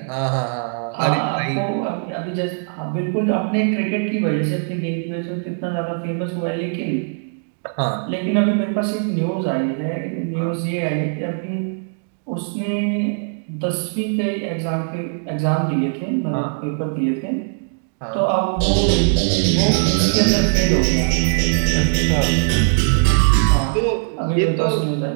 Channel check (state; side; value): silent; left; digital silence